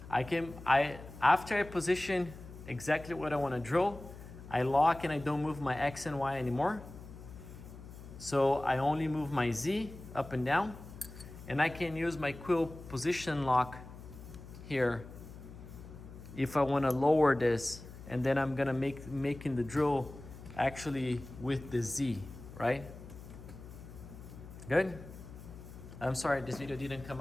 After I position exactly what I want to drill, I lock and I don't move my X and Y anymore. So I only move my Z up and down, and I can use my quill position lock here if I want to lower this, and then I'm gonna making the drill actually with the Z, right? Good? I'm sorry this video didn't come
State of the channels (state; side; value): noise; left; hum, 15 dB below the sound